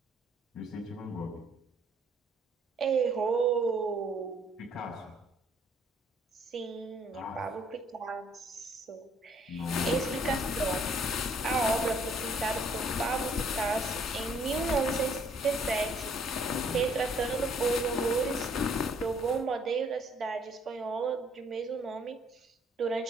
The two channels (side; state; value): both; normal; correlation 0.63